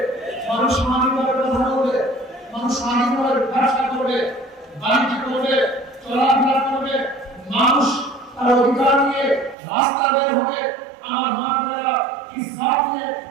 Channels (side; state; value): left; drops out; at 9.6 s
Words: মানুষ স্বাধীনভাবে কথা বলবে, মানুষ স্বাধীনভাবে ব্যবসা করবে, বাণিজ্য করবে, চলাফেরা করবে, মানুষ তার অধিকার নিয়ে রাস্তা বের হবে। আমার মা বোনেরা ইসলাম নিয়ে